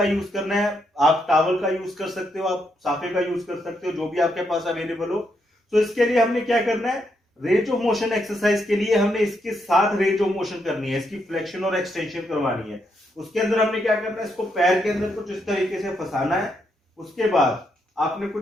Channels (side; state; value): both; normal; correlation 0.79